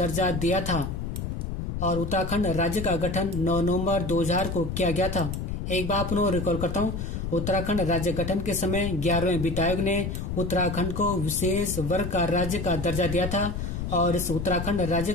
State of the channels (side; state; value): left; noise; rumble, 4 dB below the sound